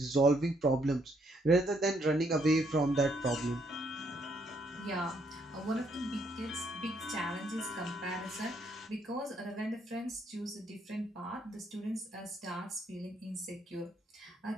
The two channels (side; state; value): both; normal; correlation 0.72